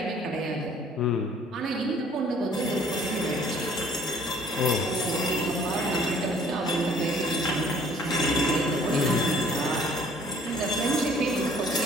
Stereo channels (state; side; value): normal; both; correlation 0.56